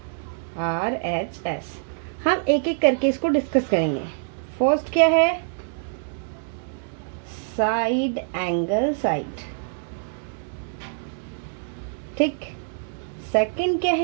हम एक एक करके इसको डिस्कस करेंगे। फर्स्ट क्या है? साइड एंगल साइड, ठीक। सेकंड क्या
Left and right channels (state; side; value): silent; left; digital silence